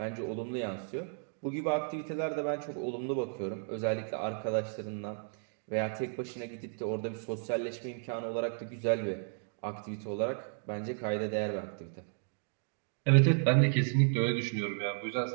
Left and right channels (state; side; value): silent; left; 55 dB below the other